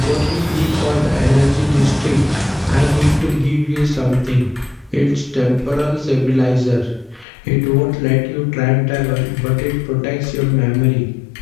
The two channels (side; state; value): right; drops out; at 7.2 s